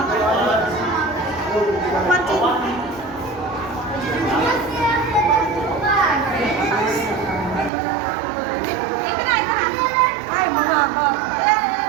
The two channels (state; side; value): drops out; left; at 7.7 s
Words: Ay, mga ko.